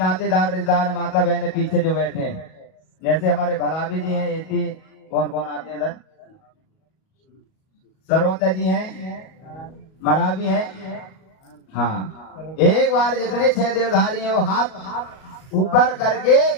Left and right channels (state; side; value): late; right; 38 ms